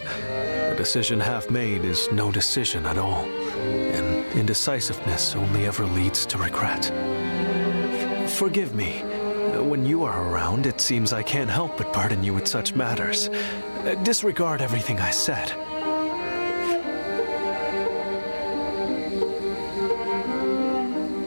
A decision half made is no decision at all, and indecisiveness only ever leads to regret. Forgive me. When you are around, it seems I can't help but burden you with such matters. Disregard everything I said.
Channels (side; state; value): both; inverted; correlation -1.00